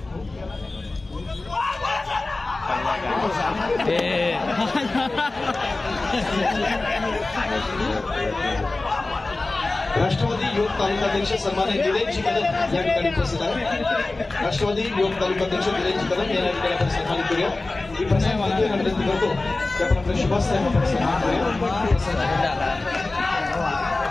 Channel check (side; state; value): right; quieter; 3.2 dB